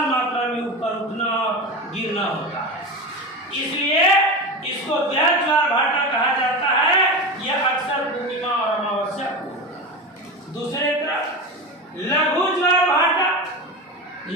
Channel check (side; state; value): both; normal; correlation 0.24